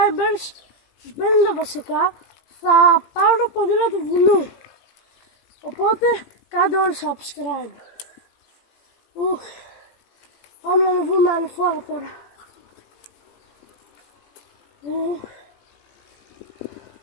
στους 50 βασικά, θα πάρω ποδήλατο του βουνού. Οπότε κάντε όλοι subscribe. Πάμε να ανεβούμε ανηφόρα τώρα.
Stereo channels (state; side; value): late; right; 18 ms